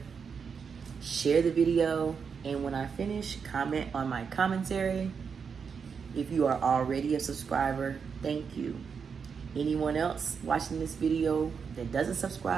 share the video, and when I finish, comment on my commentary. If you are already a subscriber, thank you. Anyone else watching this video that doesn't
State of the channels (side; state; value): left; quieter; 6.2 dB